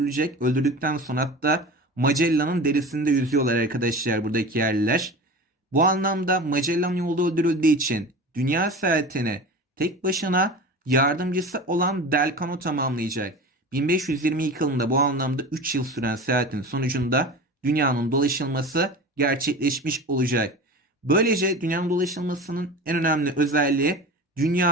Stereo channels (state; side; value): normal; both; correlation 0.33